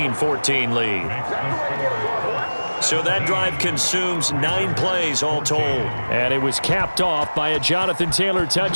lead. So that drive consumes 9 plays all told. And it was capped off by a Jonathan Taylor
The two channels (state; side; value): inverted; both; correlation -1.00